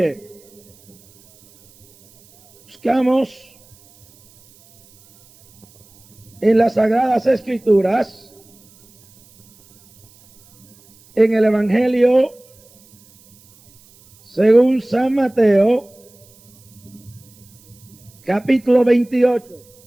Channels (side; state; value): right; noise; hiss, 29 dB below the sound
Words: Buscamos en las Sagradas Escrituras, en el Evangelio según San Mateo, capítulo